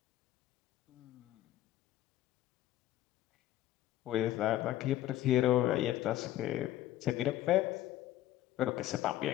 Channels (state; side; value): quieter; right; 13.7 dB